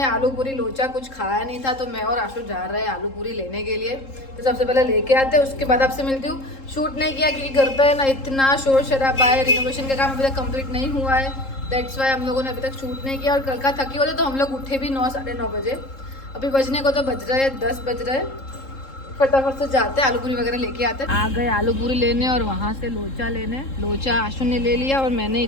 आलू पूरी लोचा कुछ खाया नहीं था, तो मैं और आशु जा रहे हैं आलू पूरी लेने के लिए। तो सबसे पहले लेके आते हैं, उसके बाद आपसे मिलती हूँ। शूट नहीं किया क्योंकि घर पे ना इतना शोर शराबा है, रिनोवेशन का काम अभी तक कंप्लीट नहीं हुआ है, दैट्स वाई हम लोगों ने अभी तक शूट नहीं किया। और कल का थकी होते तो हम लोग उठे भी 9 साढ़े 9 बजे। अभी बजने को तो बज रहे हैं 10 बज रहे हैं। फटाफट से जाते हैं, आलू पूरी वगैरह लेके आते हैं। आ गए आलू पूरी लेने और वहाँ से लोचा लेने। लोचा आशु ने ले लिया और मैंने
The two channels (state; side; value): late; right; 3.7 ms